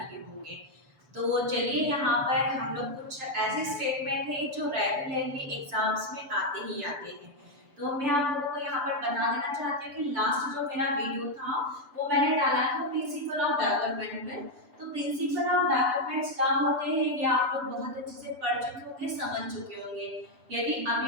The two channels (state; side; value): late; left; 6.9 ms